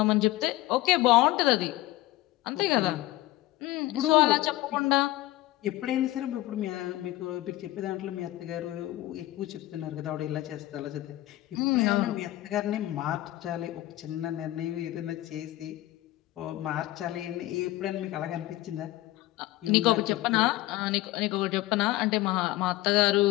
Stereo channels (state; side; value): quieter; right; 16.6 dB